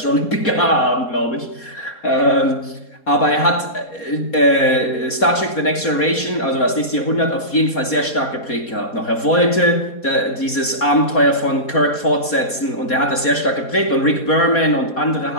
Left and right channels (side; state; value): right; late; 4.2 ms